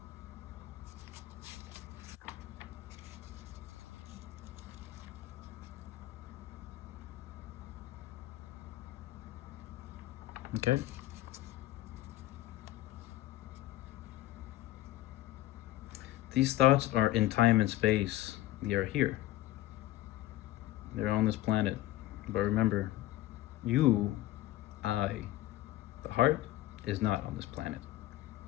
okay. These thoughts are in time and space. They are here. They're on this planet. But remember, you, I, the heart, is not on this planet.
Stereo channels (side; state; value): right; quieter; 15.8 dB